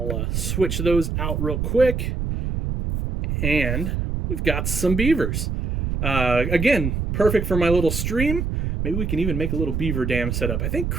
switch those out real quick. And we've got some beavers. Again, perfect for my little stream. Maybe we can even make a little beaver dam setup. I think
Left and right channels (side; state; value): right; noise; rumble, 1 dB below the sound